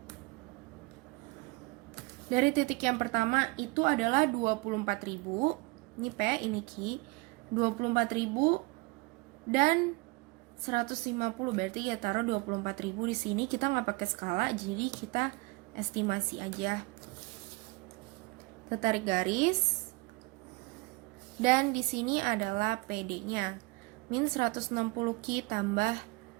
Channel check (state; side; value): quieter; left; 25.5 dB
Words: Dari titik yang pertama itu adalah 24.000. Ini P, ini Q. 24.000 dan 150. Berarti ya taruh 24.000 di sini. Kita nggak pakai skala, jadi kita estimasi aja. Kita tarik garis. Dan di sini adalah PD-nya. Min 160 Ki tambah